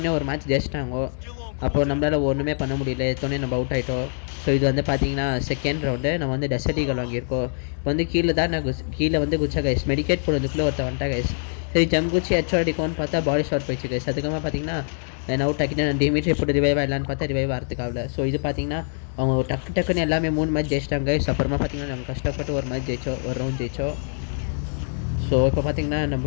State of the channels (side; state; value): right; silent; digital silence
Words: ஒரு மேட்ச் ஜெயிச்சிட்டாங்க. அப்போது நம்மளால் ஒன்றுமே பண்ண முடியல, எத்தோடனே நம்ம அவுட் ஆகிட்டோம். ஸோ இது வந்து பார்த்தீங்கன்னா செகண்ட் ரவுண்டு நம்ம வந்து டெசர்டிகள் வாங்கியிருக்கோம். இப்போ வந்து கீழே தான் நான் கீழே வந்து குச்சா கைஸ், மெடிக்கேட் போடுறதுக்குள்ளே ஒருத்த வந்துட்டா கைஸ். சரி ஜம் குச்சி ஹெட்ஷாட் அடிக்கும்னு பார்த்தா பாடி ஷாட் போயிடுச்சு கைஸ். அதுக்கப்புறமா பார்த்தீங்கன்னா நான் அவுட் ஆக்கிட்டு நான் டிமிட்ரி போட்டு ரிவைவ் ஆகலான்னு பார்த்தா ரிவைவ் ஆகிறதுக்காகல. ஸோ இது பார்த்தீங்கன்னா அவங்க டக்குன்னு எல்லாமே 3 மேட்ச் ஜெயிச்சிட்டாங்க கைஸ். அப்புறமா பார்த்தீங்கன்னா நம்ம கஷ்டப்பட்டு ஒரு மேட்ச் ஜெயிச்சோம், ஒரு ரவுண்ட் ஜெயிச்சோம். ஸோ இப்போ பார்த்தீங்கன்னா